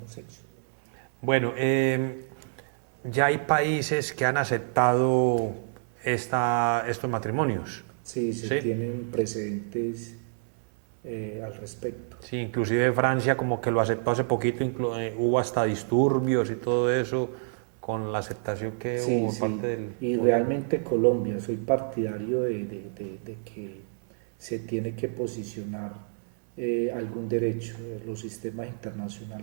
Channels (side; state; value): left; silent; 59 dB below the other